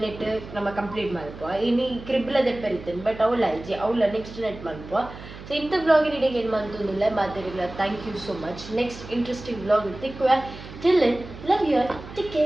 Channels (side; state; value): right; noise; hum, 14 dB below the sound